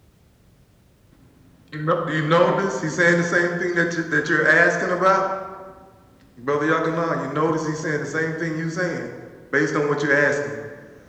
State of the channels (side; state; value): both; identical; correlation 1.00